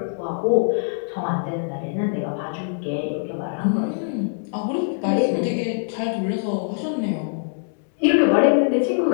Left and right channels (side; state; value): right; silent; digital silence